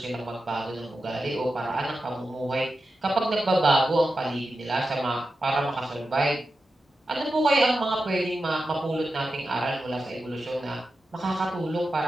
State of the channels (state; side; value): normal; both; correlation 0.91